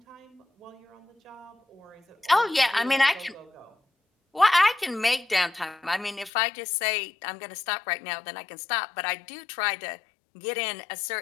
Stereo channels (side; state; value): right; drops out; at 6.3 s